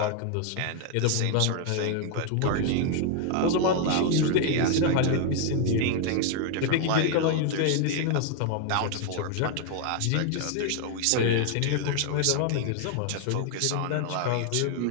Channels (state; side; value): different; both; correlation 0.00